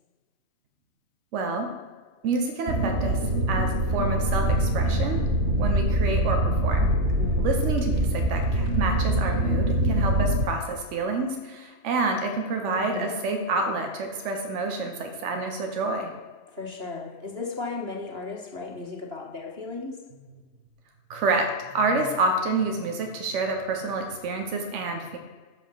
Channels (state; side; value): late; left; 3.5 ms